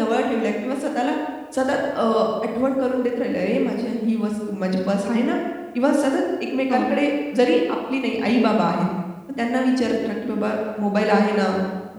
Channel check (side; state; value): both; identical; correlation 1.00